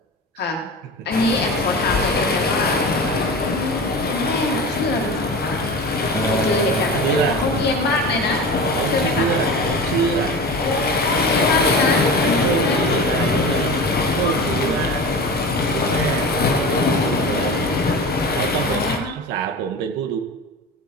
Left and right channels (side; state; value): both; normal; correlation 0.31